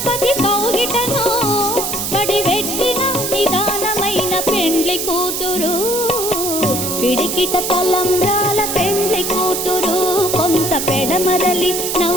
కౌగిటను పడిపెట్టిన నిదానమైన పెండ్లి కూతురు. పిడికిట తలంబ్రాల పెండ్లి కూతురు, కొంత పెడమరలి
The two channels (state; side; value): noise; right; hiss, 2 dB below the sound